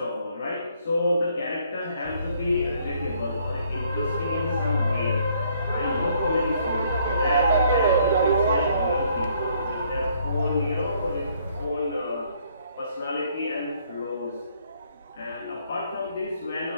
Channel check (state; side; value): inverted; both; correlation -0.66